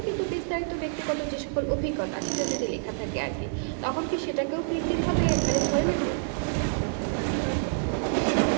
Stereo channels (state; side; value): silent; left; digital silence